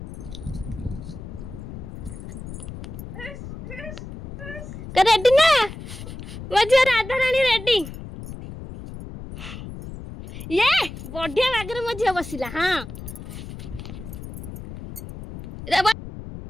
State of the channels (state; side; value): noise; left; rumble, 11 dB below the sound